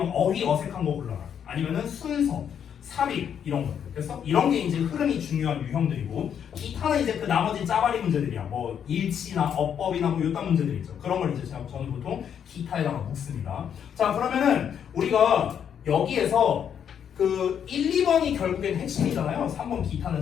어휘 어색한 거 골라라 아니면은 순서 삽입 이런 것들 그래서 이런 게 이제 흐름이 중요한 유형들이고 기타는 이제 그 나머지 짜바리 문제들이야 뭐 일치나 어법이나 뭐 이딴 문제들 있죠. 그런 걸 이제 저는 보통 기타에다가 묻습니다. 자 그러면은 우리가 여기에서 그 1, 2번이 결국엔 핵심이잖아요. 3번 기타는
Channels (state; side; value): quieter; right; 8.4 dB